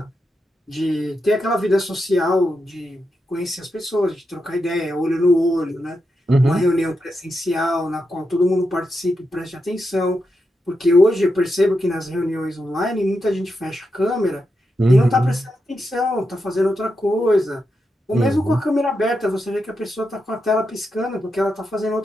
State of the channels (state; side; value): normal; both; correlation 0.86